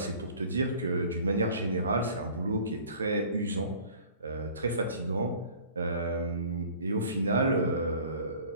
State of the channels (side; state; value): both; inverted; correlation -0.48